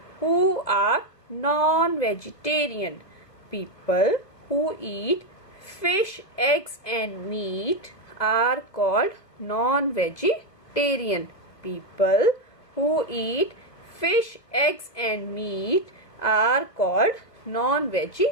Who are non-vegetarian? People who eat fish, eggs and meat are called non-vegetarian. People who eat fish, eggs and meat are called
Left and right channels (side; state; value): right; late; 2.3 ms